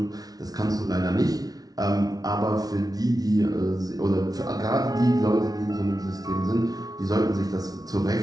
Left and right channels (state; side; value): late; left; 0.18 ms